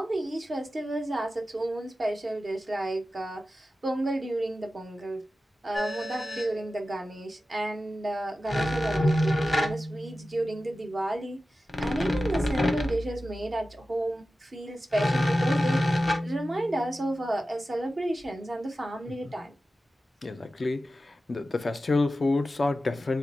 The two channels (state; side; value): normal; both; correlation 0.94